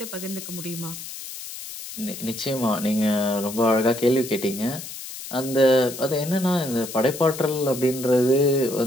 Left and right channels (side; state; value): left; noise; hiss, 11 dB below the sound